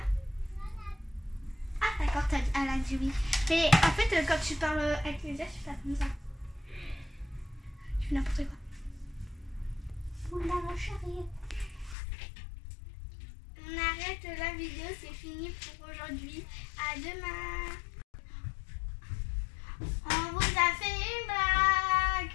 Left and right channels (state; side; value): drops out; right; at 12.0 s